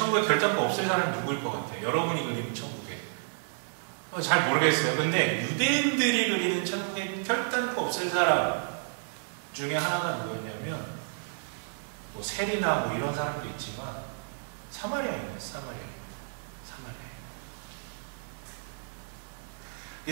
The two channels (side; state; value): left; silent; 57 dB below the other